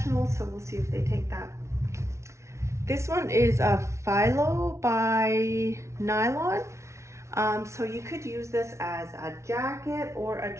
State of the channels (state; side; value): late; left; 0.13 ms